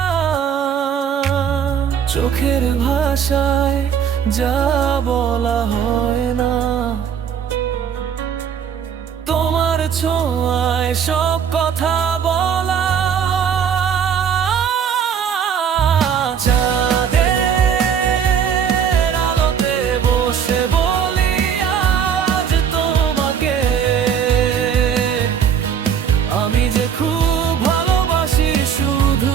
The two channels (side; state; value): left; quieter; 7.8 dB